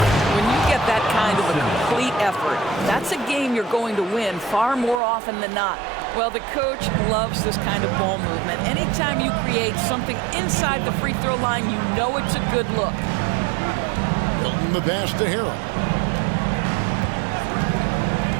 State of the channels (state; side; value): drops out; left; at 5.0 s